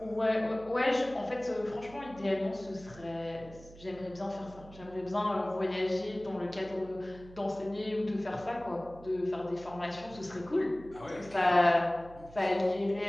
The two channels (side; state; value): right; noise; hum, 19 dB below the sound